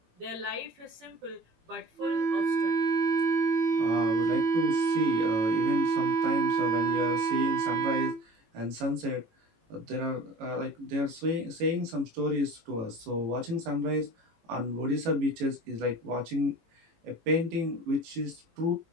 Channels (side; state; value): left; late; 18 ms